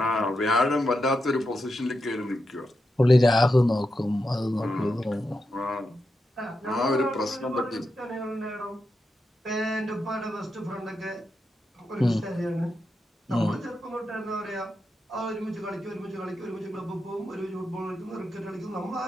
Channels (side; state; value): both; normal; correlation 0.87